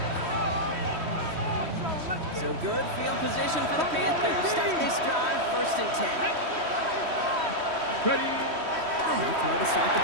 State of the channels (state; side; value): late; left; 3.1 ms